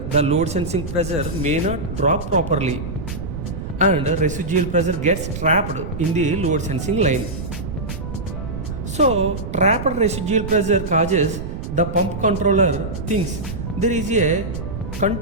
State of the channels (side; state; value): right; noise; rumble, 6 dB below the sound